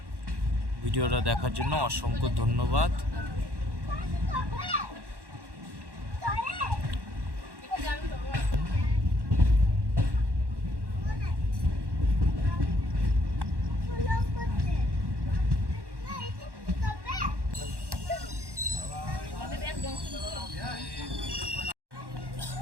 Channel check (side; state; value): left; late; 1.1 ms